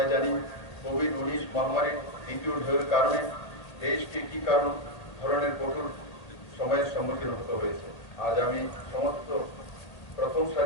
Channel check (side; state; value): right; late; 1.8 ms